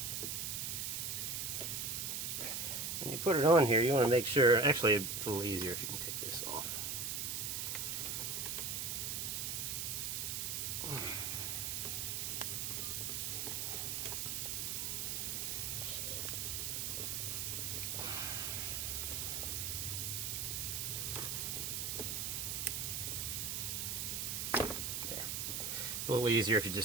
When you put it on here, you want to make sure, actually it's a little easier if you can take this off. A little easier if you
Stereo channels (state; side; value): noise; right; hiss, 1 dB below the sound